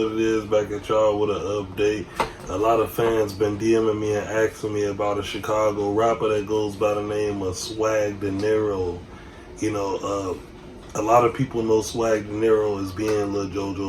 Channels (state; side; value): identical; both; correlation 1.00